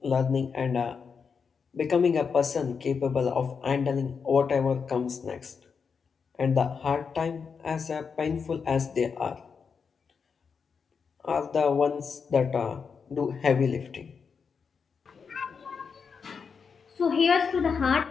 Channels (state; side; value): quieter; right; 5.9 dB